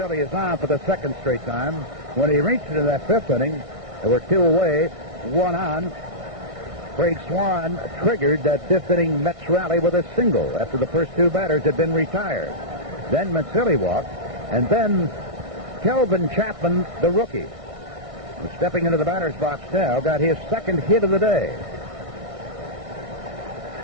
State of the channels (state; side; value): late; left; 1.6 ms